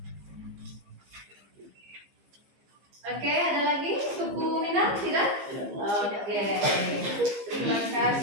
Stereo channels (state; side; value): late; left; 15 ms